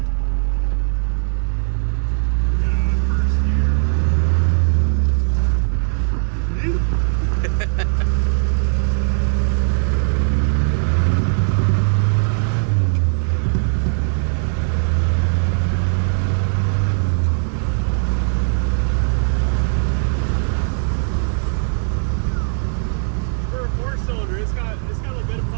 for a 4-cylinder, it's got a bit of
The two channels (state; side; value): silent; left; digital silence